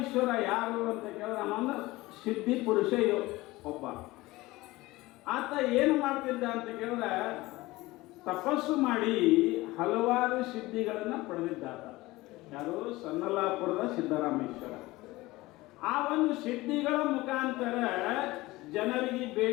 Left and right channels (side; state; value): right; quieter; 19.7 dB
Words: ಯಾರು ಅಂತ ಕೇಳಿದ್ರೆ ಅವನ ಸಿದ್ಧಿ ಪುರುಷ ಒಬ್ಬ. ಆತ ಏನು ಮಾಡ್ತಿದ್ದ ಅಂತ ಕೇಳಿದ್ರೆ ತಪಸ್ಸು ಮಾಡಿ ಹಲವಾರು ಸಿದ್ಧಿಗಳನ್ನು ಪಡೆದಿದ್ದಾತ. ಯಾರು? ಸನ್ನಲಾಪುರದ ಸಿದ್ದರಾಮೇಶ್ವರ. ಆ ಒಂದು ಸಿದ್ಧಿಗಳ ಮುಖಾಂತರ ಜನರಿಗೆ